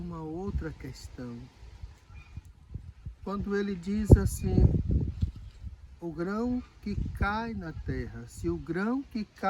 outra questão. Quando ele diz assim, o grão que cai na terra, se o grão que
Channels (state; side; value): identical; both; correlation 1.00